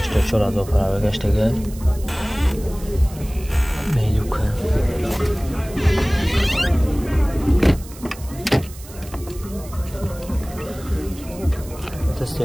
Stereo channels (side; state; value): right; noise; hiss, 18 dB below the sound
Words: پرا گشته میلیوکه